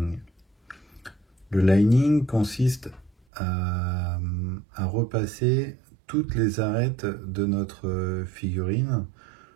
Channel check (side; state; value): left; drops out; at 3.1 s